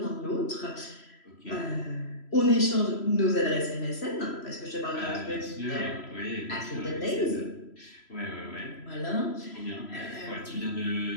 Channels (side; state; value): right; late; 3.0 ms